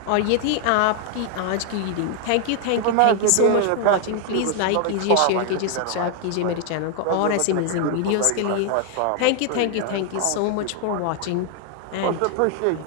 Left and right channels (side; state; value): both; different; correlation 0.00